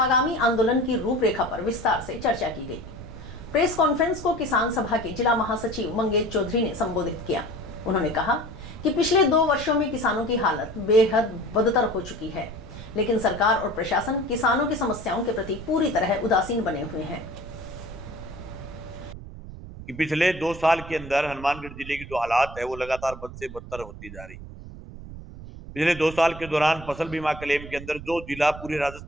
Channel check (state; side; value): noise; right; rumble, 13 dB below the sound